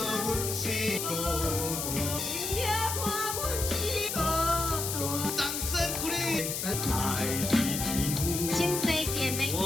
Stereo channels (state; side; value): noise; left; hiss, 2 dB below the sound